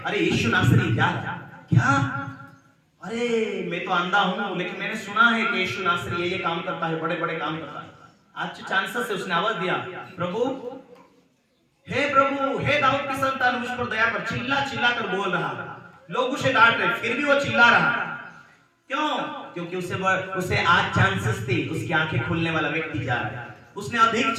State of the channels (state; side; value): identical; both; correlation 1.00